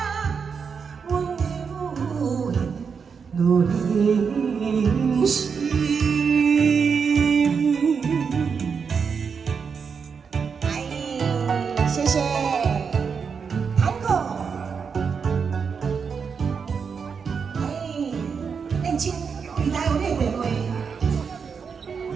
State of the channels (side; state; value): left; quieter; 6.0 dB